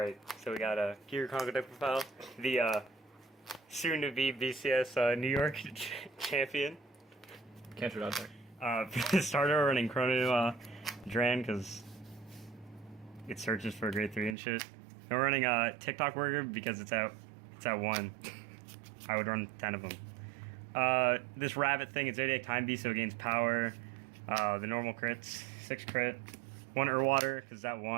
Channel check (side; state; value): left; drops out; at 14.4 s